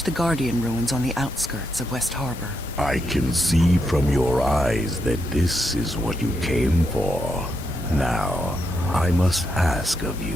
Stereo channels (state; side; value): normal; both; correlation 0.81